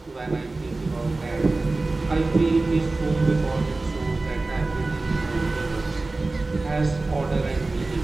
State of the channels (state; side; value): quieter; left; 3.3 dB